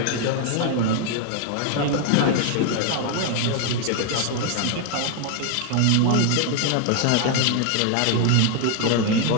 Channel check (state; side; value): different; both; correlation 0.00